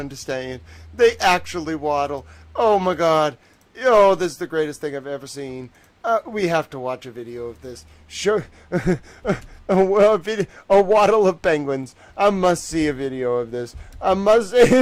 They actually waddle. Oh my god. Oh, this is the greatest thing I've ever seen. We have to watch a video of this. Sure. A waddle of penguins. I must see a video of this. I must.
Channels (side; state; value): both; identical; correlation 1.00